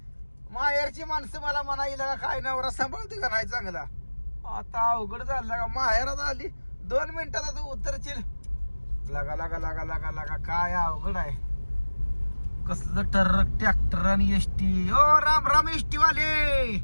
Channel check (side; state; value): both; inverted; correlation -1.00